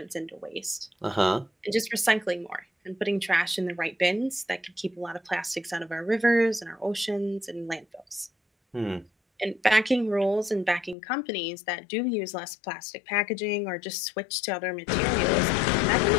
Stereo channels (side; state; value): right; drops out; at 11.0 s